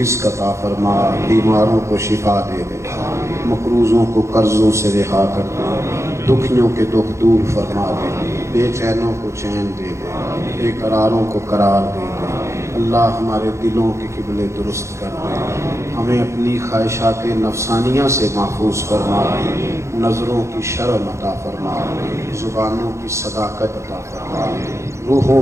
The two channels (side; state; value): left; late; 0.14 ms